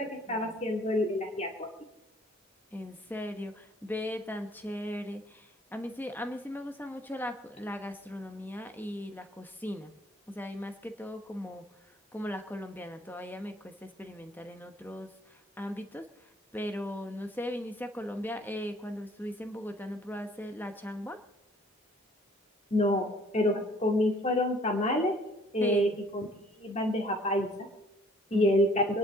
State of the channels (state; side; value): normal; both; correlation 0.57